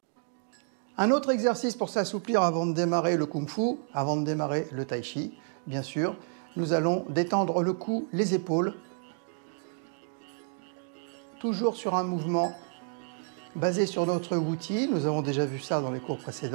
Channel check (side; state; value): left; silent; 58 dB below the other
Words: Un autre exercice pour s'assouplir avant de démarrer le Kung Fu, avant de démarrer le Tai Chi, bien sûr. Nous allons détendre le cou, les épaules, toujours sur un mouvement basé sur notre Wuti. Nous avons déjà vu ça dans les cours